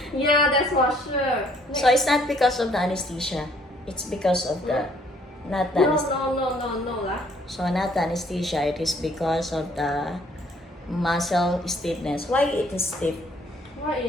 Yeah, that's for sure. So it's not because of the anesthesia. It's because of the not the anesthesia. No lah. So not the anesthesia. It is because of the muscle stiffness. Why it is stiff? Why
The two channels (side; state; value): both; normal; correlation 0.62